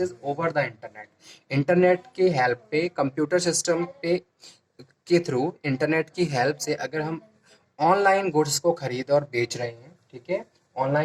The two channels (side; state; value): both; identical; correlation 1.00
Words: over the internet. Internet के हेल्प पे, कंप्यूटर सिस्टम पे के थ्रू, इंटरनेट की हेल्प से अगर हम ऑनलाइन गुड्स को खरीद और बेच रहे हैं। ठीक है,